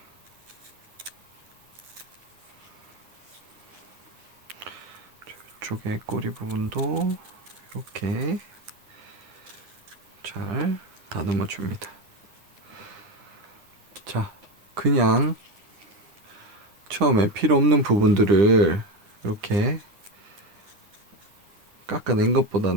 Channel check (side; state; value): left; late; 10 ms